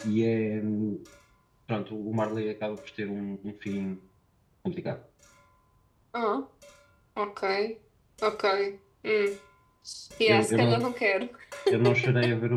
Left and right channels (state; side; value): identical; both; correlation 1.00